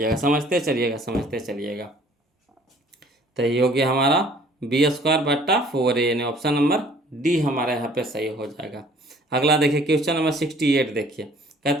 चलिएगा। तो ये हो गया हमारा बी स्क्वायर बट्टा 4a, यानी ऑप्शन नंबर डी हमारे यहाँ पे सही हो जाएगा। अगला देखिए क्वेश्चन नंबर 68 देखिए,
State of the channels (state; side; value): normal; both; correlation 0.55